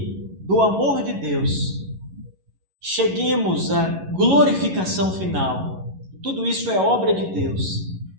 do amor de Deus cheguemos à glorificação final, tudo isso é obra de Deus,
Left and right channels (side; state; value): left; late; 11 ms